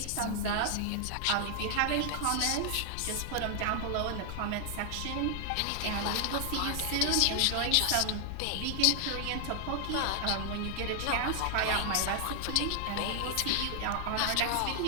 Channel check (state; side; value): different; both; correlation 0.00